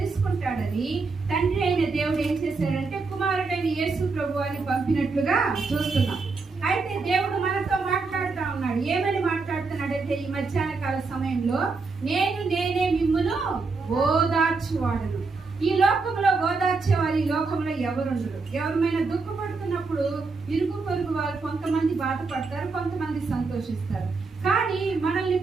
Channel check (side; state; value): left; quieter; 4.2 dB